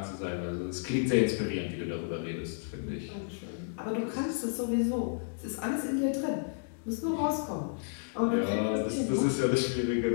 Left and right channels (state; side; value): silent; right; digital silence